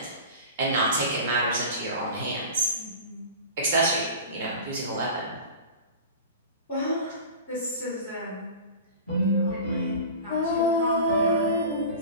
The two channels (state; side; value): inverted; both; correlation -0.34